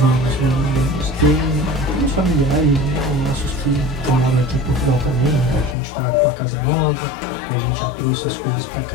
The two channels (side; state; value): right; drops out; at 5.8 s